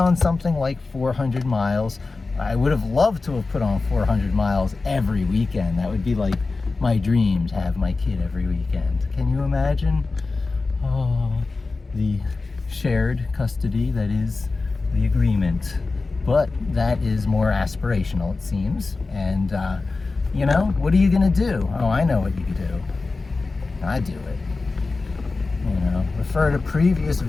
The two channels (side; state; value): right; quieter; 3.8 dB